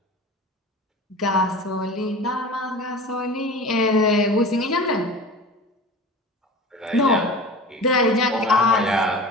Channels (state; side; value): normal; both; correlation 0.35